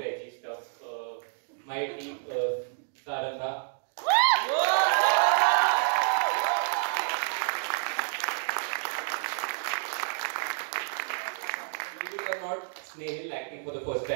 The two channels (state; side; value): silent; left; digital silence